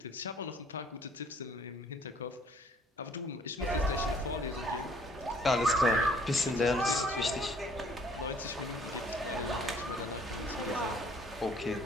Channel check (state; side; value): normal; both; correlation 0.59